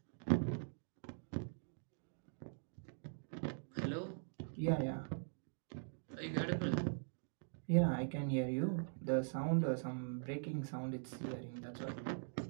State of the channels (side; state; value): left; silent; digital silence